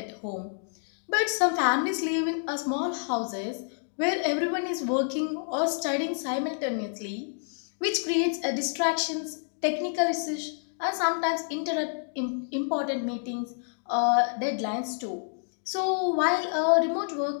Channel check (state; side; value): silent; right; digital silence